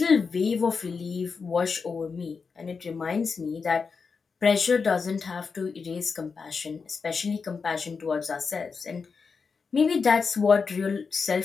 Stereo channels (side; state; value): right; quieter; 5.2 dB